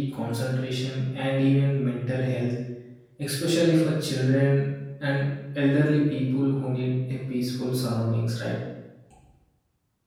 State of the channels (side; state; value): both; identical; correlation 1.00